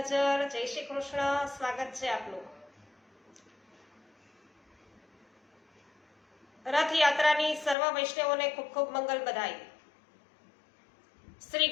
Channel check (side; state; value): right; drops out; at 7.8 s